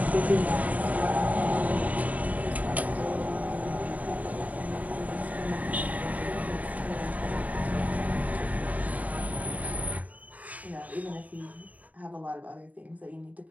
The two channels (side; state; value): left; late; 0.072 ms